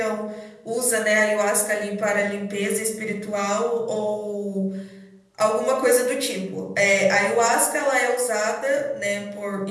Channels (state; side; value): identical; both; correlation 1.00